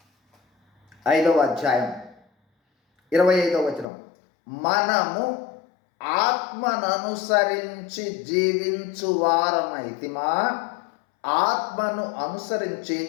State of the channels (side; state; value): right; drops out; at 3.9 s